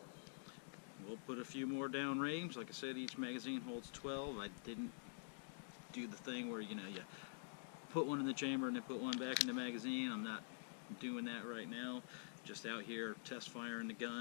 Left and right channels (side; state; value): right; silent; digital silence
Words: we'll put a few more down range. Like I said, each magazine holds 12. I didn't do the thing where, you know, you put one in the chamber and then put one back in the magazine. I'm not doing that right now. Just out here test firing the